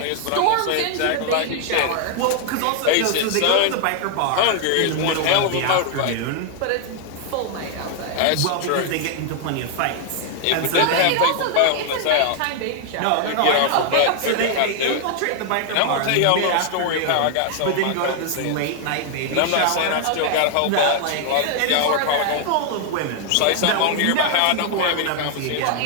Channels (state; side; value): different; both; correlation 0.00